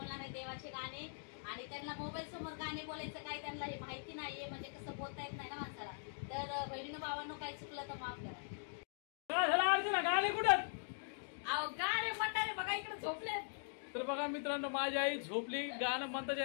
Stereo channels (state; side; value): silent; right; digital silence